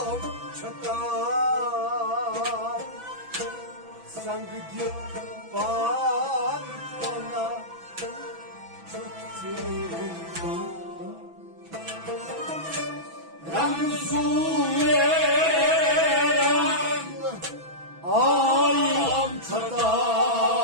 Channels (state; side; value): late; left; 6.0 ms